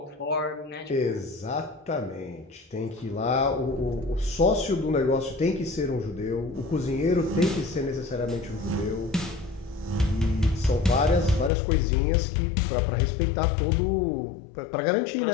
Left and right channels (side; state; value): right; drops out; at 11.5 s